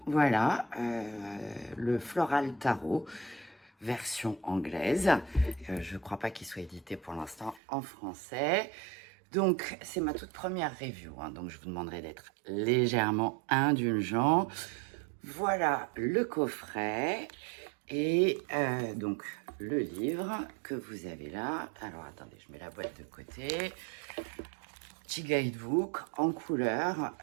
Voilà, le Floral Tarot version anglaise. Je ne crois pas qu'il soit édité pour l'instant en français. Donc, c'est ma toute première review, hein, donc je vous demanderai d'être légèrement indulgent. Voilà le coffret. Et donc, le livre que vous avez là. Alors, attendez, je mets la boîte de côté. Petit guidebook en couleur.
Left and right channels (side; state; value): left; drops out; at 7.6 s